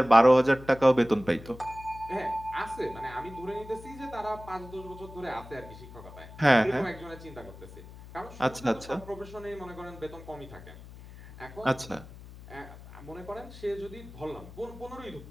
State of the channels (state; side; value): noise; left; hum, 16 dB below the sound